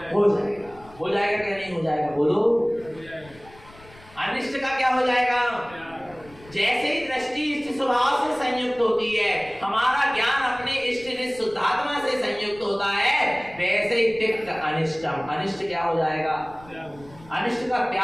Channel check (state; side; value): noise; left; rumble, 23 dB below the sound